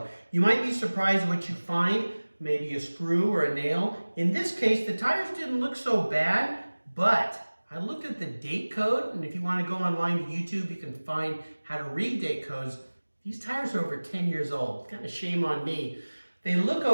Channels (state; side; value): inverted; both; correlation -1.00